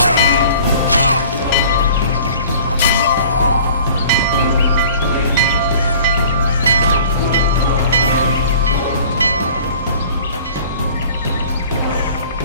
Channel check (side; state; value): both; inverted; correlation -0.47